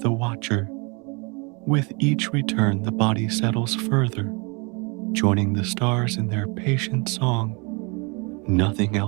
watcher. With each return, the body settles further, joining the stars in their patient song. Nothing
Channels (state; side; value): quieter; left; 30.7 dB